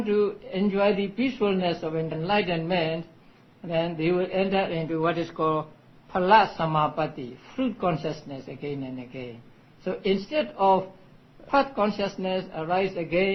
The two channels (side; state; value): both; identical; correlation 1.00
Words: to enjoy the peacefulness of enlightenment, then they will enter into what is called phala samapatti, fruit consciousness again and again. So instead of path consciousness arise